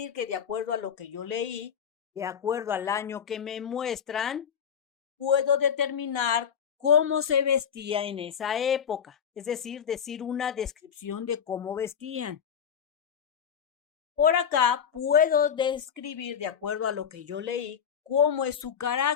que de acuerdo a lo que yo leí, de acuerdo al año que me muestran, puedo determinar cómo se vestía en esa época, es decir una descripción de cómo vestían. Por acá puedo describir, de acuerdo a lo que yo leí, cómo es su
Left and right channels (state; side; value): quieter; right; 7.8 dB